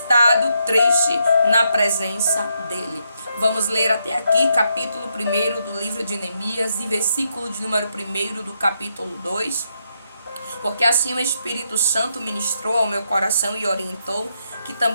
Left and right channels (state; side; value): inverted; both; correlation -0.79